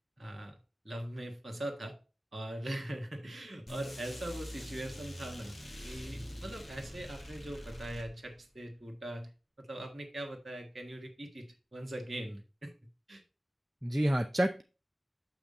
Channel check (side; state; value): both; normal; correlation 0.96